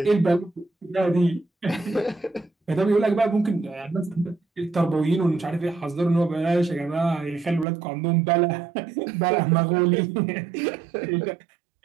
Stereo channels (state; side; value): drops out; left; at 7.7 s